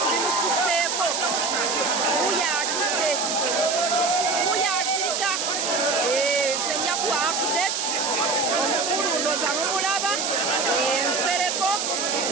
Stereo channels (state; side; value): noise; right; hiss, 1 dB below the sound